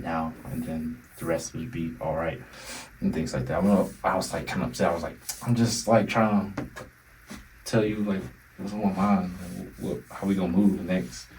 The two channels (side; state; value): both; identical; correlation 1.00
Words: now, and then the rest would be all right and things like that. I was like kind of upset. I was like, I'm just like trying to tell you like what's on my mind, how we gonna move next